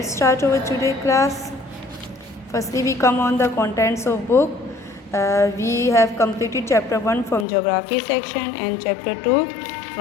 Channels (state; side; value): drops out; right; at 7.5 s